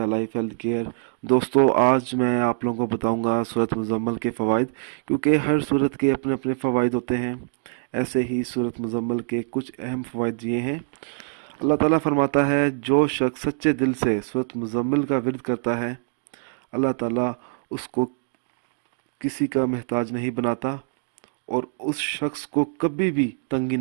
लाइफ हेल्थ केयर। दोस्तों, आज मैं आप लोगों को बताऊंगा सूरत मुज़म्मल के फ़वाइद, क्योंकि हर सूरत के अपने अपने फ़वाइद होते हैं। ऐसे ही सूरत मुज़म्मल के कुछ अहम फ़वाइद ये हैं। अल्लाह ताला फरमाता है, जो शख्स सच्चे दिल से सूरत मुज़म्मल का विर्द करता है, अल्लाह ताला उसको किसी का मोहताज नहीं बनाता और उस शख्स को कभी भी तंगी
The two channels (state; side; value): silent; left; 62 dB below the other